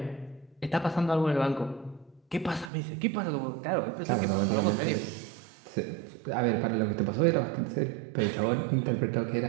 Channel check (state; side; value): drops out; left; at 2.7 s